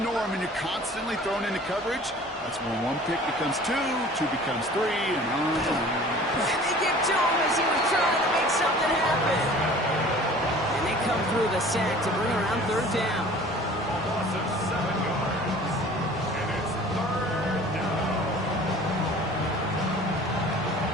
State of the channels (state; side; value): normal; both; correlation 0.46